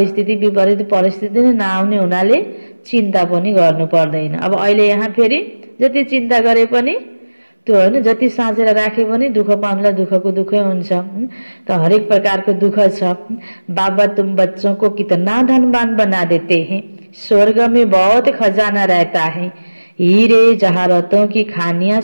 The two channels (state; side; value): inverted; both; correlation -1.00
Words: विपरीत परिस्थिति नै नआउने हुनाले चिन्ता पनि गर्नु पर्दैन। अब अहिले यहाँ फेरि जति चिन्ता गरे पनि त्यो हैन, जति साँचेर राखे पनि दुःख पाउनुलाई दुःखको दुःखै हुन्छ। त हरेक प्रकारको दुःख छ। बाबा तुम बच्चों को कितना धनवान बना देते हैं, स्वर्ग में बहुत खजाना रहता है, हीरे जवाहरातों की खानियां